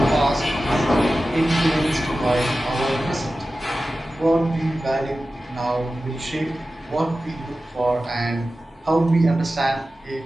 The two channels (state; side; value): normal; both; correlation 0.95